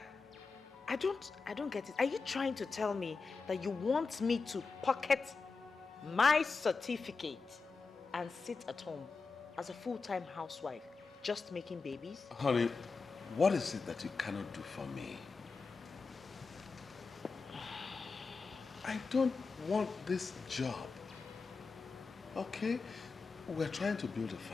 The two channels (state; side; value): quieter; right; 4.6 dB